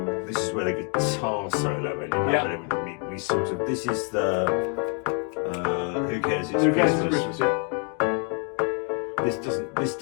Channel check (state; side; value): quieter; right; 39.1 dB